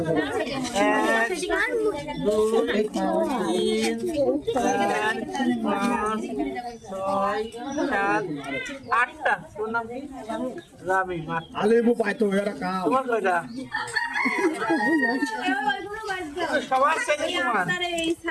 আটটা। তোর নাম কি? রামিন। তোমার কয়টা? সবার সাথে তোমার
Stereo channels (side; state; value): both; identical; correlation 1.00